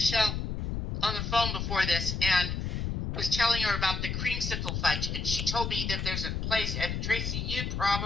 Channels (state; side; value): noise; left; rumble, 2 dB below the sound